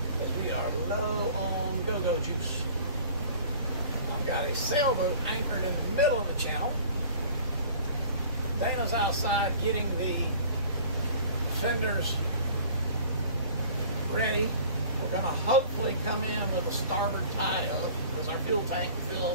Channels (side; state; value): both; inverted; correlation -0.47